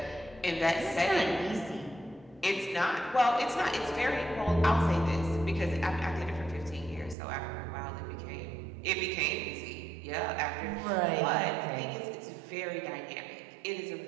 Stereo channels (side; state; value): left; drops out; at 7.2 s